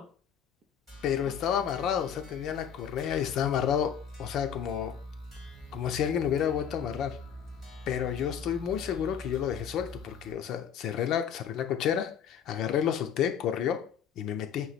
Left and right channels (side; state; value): right; quieter; 8.2 dB